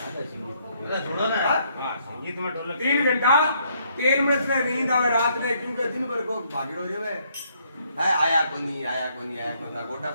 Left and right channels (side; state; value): both; inverted; correlation -0.70